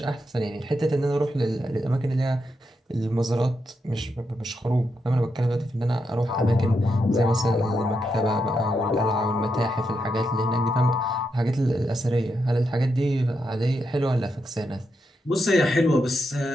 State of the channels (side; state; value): both; normal; correlation 0.83